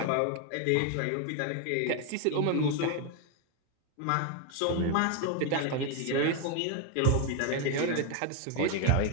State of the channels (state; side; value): different; both; correlation 0.01